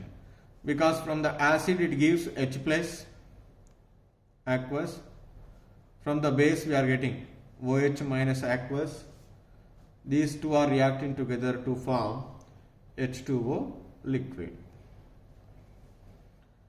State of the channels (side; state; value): both; identical; correlation 1.00